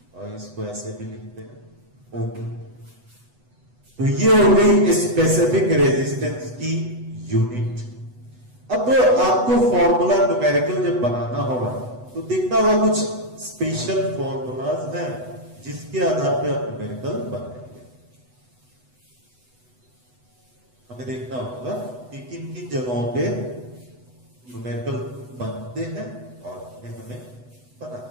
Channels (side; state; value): left; late; 8.0 ms